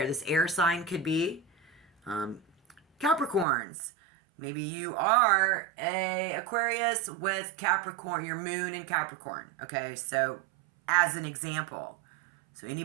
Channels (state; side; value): drops out; left; at 3.5 s